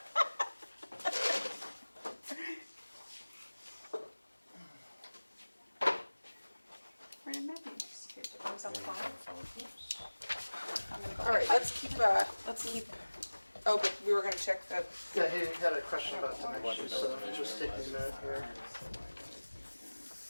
Where did Matthew disappear to? Oh, he's on the phone. I'm gonna go All right, get my- let's keep, oh, but we were gonna check the, Yeah, he had a question about dimensions, so just taking a minute here.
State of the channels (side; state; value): both; inverted; correlation -1.00